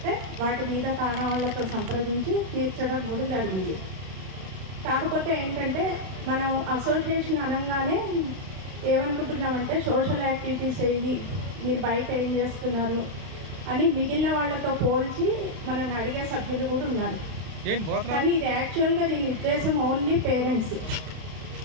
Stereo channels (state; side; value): late; left; 31 ms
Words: వాటి మీద కారణాలతో సంప్రదించి తీర్చడం కూడా జరిగింది. కాకపోతే ఏంటంటే మనం అసోసియేషన్ అనగానే ఏమనుకుంటున్నామంటే సోషల్ యాక్టివిటీస్ ఏవి, మీరు బయట ఏం చేస్తున్నారు అని మిగిలిన వాళ్ళతో పోల్చి మనల్ని అడిగే సభ్యులు కూడా ఉన్నారు. కానీ ఇది యాక్చువల్గా దీని ఉద్దేశం ఓన్లీ పేరెంట్స్.